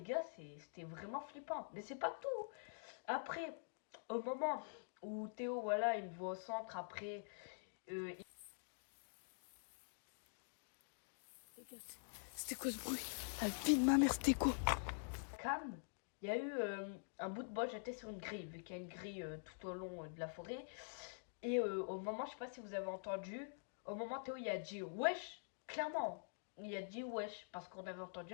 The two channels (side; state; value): right; silent; digital silence